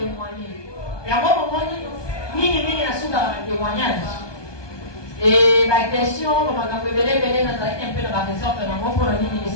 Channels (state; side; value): late; right; 1.2 ms